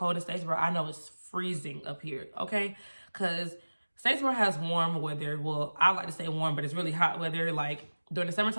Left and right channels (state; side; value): inverted; both; correlation -1.00